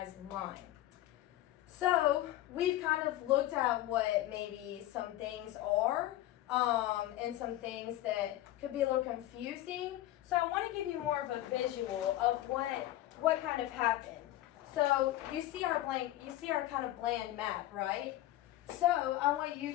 line. So we've kind of looked at what maybe some things are, and some things that could be a little confusing. So I want to give you more of a visual of what kind of happened. So you see our kind of bland map, right? So I want you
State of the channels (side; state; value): right; quieter; 14.8 dB